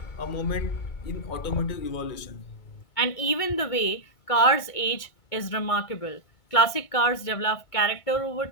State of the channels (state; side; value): late; right; 2.2 ms